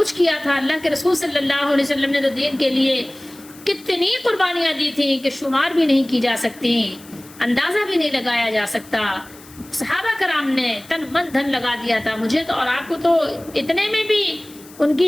کیا تھا، اللہ کے رسول صلی اللہ علیہ وسلم نے تو دین کے لیے کتنی قربانیاں دی تھیں کہ شمار بھی نہیں کی جا سکتی، اندازہ بھی نہیں لگایا جا سکتا۔ صحابہ کرام نے تن من دھن لگا دیا تھا۔ مجھے تو اور آپ کو تو اتنے میں بھی ان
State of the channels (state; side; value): noise; left; hiss, 22 dB below the sound